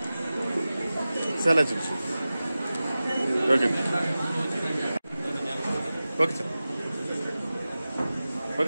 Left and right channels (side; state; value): both; inverted; correlation -0.96